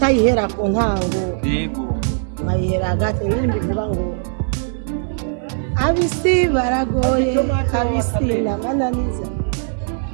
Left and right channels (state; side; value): silent; left; digital silence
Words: ku ntango. Yego. Nkayihera hagati, indirimbo ivuga ngo abisi baragoye, abisi namananiza.